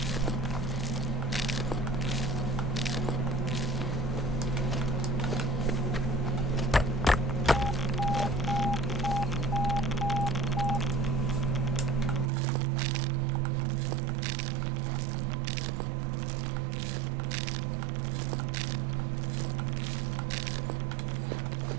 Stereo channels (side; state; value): left; drops out; at 12.2 s